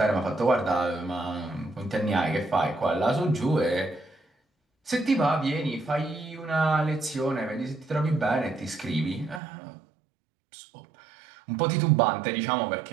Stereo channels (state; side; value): drops out; left; at 9.4 s